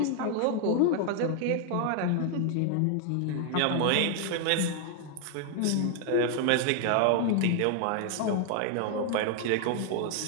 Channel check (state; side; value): different; both; correlation 0.00